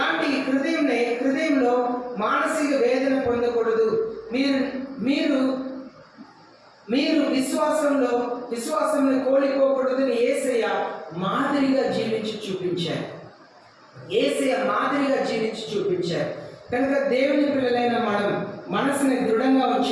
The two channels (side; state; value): both; identical; correlation 1.00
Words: హృదయంలో మానసిక వేదన పొందకూడదు. మీరు విశ్వాసంలో కోల్పోకూడదని యేసయ్య మాదిరిగా జీవించి చూపించారు. యేసయ్య మాదిరిగా జీవించి చూపించారు. కనుక దేవుని పిల్లలైన మనం మనసుని దృఢంగా